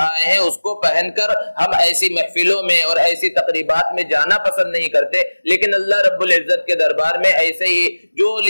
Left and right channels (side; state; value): both; inverted; correlation -1.00